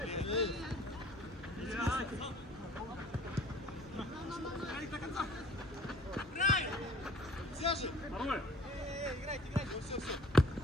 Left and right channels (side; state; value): both; normal; correlation 0.50